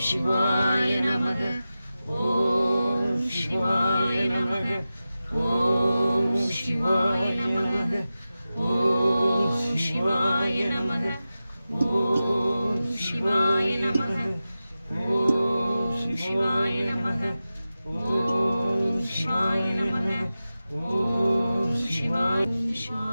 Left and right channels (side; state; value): both; inverted; correlation -0.94